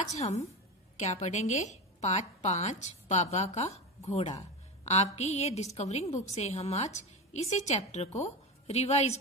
हम क्या पढ़ेंगे, पाठ 5 बाबा का घोड़ा। आपकी ये डिस्कवरिंग बुक से हम आज इसी चैप्टर को रिवाइज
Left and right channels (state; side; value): normal; both; correlation 0.20